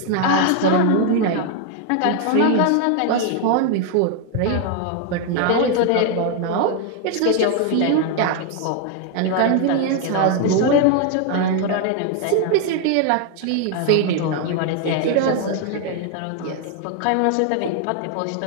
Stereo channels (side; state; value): both; different; correlation 0.00